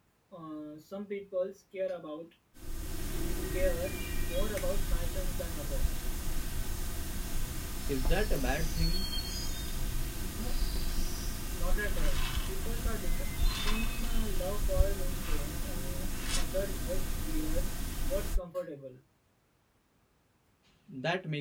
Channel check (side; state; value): both; identical; correlation 1.00